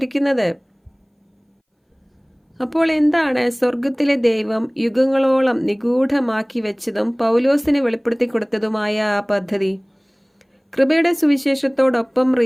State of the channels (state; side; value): identical; both; correlation 1.00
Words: അപ്പോൾ എന്താണ് സ്വർഗത്തിലെ ദൈവം യുഗങ്ങളോളം നിഗൂഢമാക്കി വെച്ചതും പൗലോസിന് വെളിപ്പെടുത്തി കൊടുത്തതുമായ ആ പദ്ധതി? കൃപയുടെ സുവിശേഷത്തോടൊപ്പം